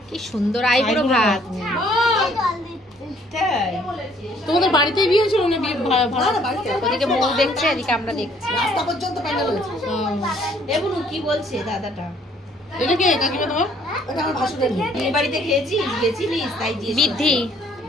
কি সুন্দর আইবুড়ো ভাত। তোমাদের বাড়িতেই বিয়ে হয়েছিল না? বিয়ে ওদিকে মৌ দেখছে, এদিকে আমরা দেখছি। রাস্তা পর্যন্ত প্যান্ডেল হয়েছে। এবনু কি বলছে দাদাটা? এটা কে কাকিমা তোমার? এটা আমার ভাসুরের মেয়ে। এই বাড়িতে গেছিলিস তাই দিয়ে বৃদ্ধি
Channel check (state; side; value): normal; both; correlation 0.62